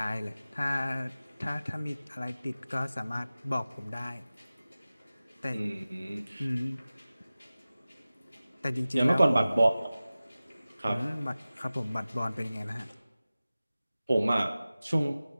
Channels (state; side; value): inverted; both; correlation -0.97